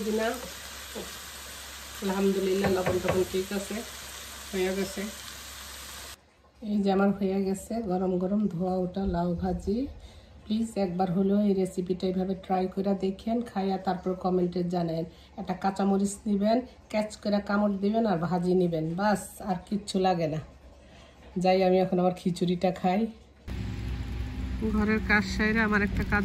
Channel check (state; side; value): identical; both; correlation 1.00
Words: কিনা। আলহামদুলিল্লাহ লবণ টবণ ঠিক আছে, হয়ে গেছে। এই যে আমার হয়ে গেছে গরম গরম ধোয়া ওটা লাউ ভাজি। প্লিজ একবার হলেও এই রেসিপিটা এইভাবে ট্রাই করে দেখেন, খাইয়া তারপর কমেন্টে জানেন। একটা কাঁচামরিচ নেবেন, ক্যাচ করে কামড় দিবেন আর ভাজি নেবেন, বাস আর কিচ্ছু লাগে না। যাই আমি এখন আমার খিচুড়িটা খাই। ঘরের কাজ সাইরে আমার একটা